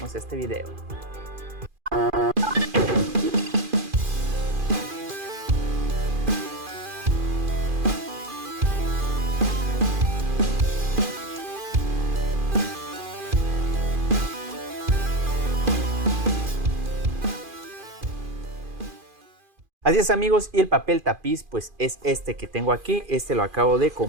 este video. Así es amigos, y el papel tapiz pues es este que tengo aquí. Este lo acabo de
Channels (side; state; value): left; late; 2.5 ms